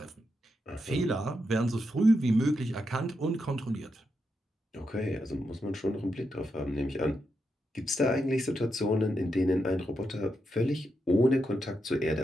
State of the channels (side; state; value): both; normal; correlation 0.84